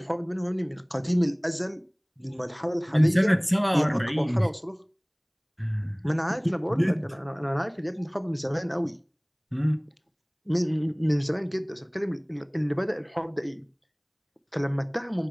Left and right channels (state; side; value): identical; both; correlation 1.00